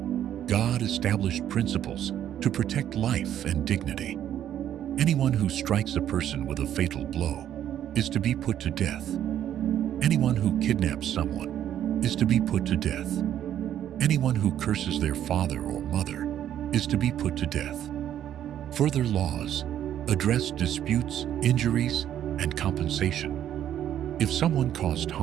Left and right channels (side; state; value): left; quieter; 10.7 dB